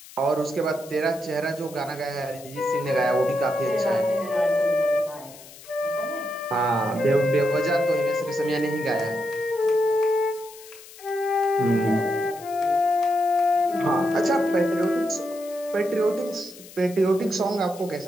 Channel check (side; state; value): left; noise; hiss, 19 dB below the sound